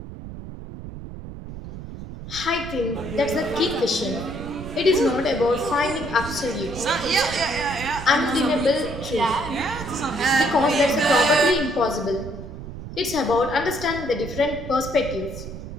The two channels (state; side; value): noise; right; rumble, 11 dB below the sound